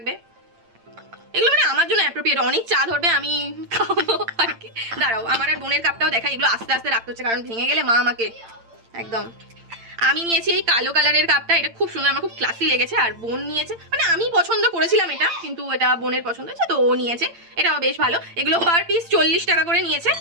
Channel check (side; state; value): left; late; 8.8 ms